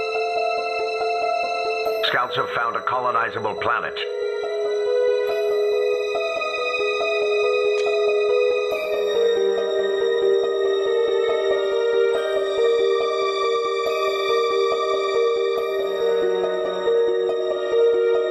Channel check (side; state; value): both; identical; correlation 1.00